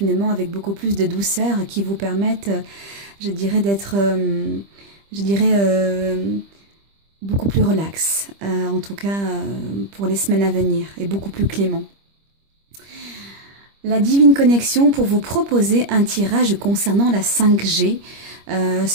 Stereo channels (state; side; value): late; left; 25 ms